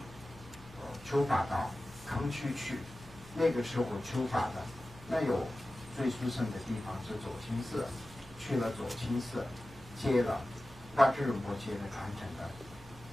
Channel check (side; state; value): right; noise; hum, 20 dB below the sound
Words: 法到康区去。那个时候求法的，那有最殊胜的地方是左倾寺，去了左倾寺，接了八智仁波切的传承的